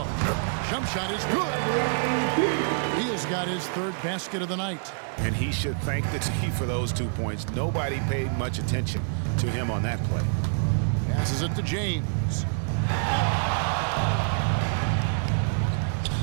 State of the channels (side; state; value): left; silent; 57 dB below the other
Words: Jump shot is good. Beal's got his third basket of the night. And he should thank the team for those 2 points. Nobody paid much attention to him on that play. Passes it to James.